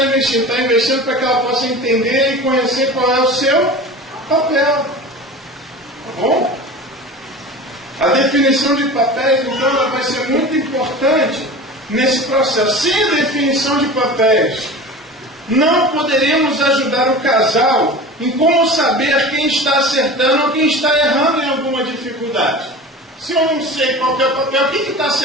investindo? Está investindo para que ela possa entender e conhecer qual é o seu papel. Tá bom? A definição de papéis, então, ela vai ser muito importante nesse processo. Sem a definição de papéis, não poderemos ajudar o casal em como saber quem está acertando ou quem está errando em alguma dificuldade. Se eu não sei qual é o papel, quem está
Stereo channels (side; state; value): both; normal; correlation 0.35